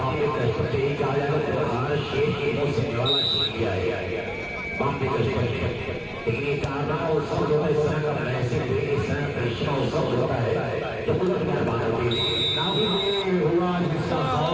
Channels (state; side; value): identical; both; correlation 1.00